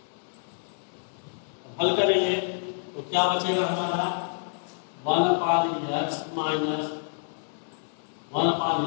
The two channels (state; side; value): silent; right; digital silence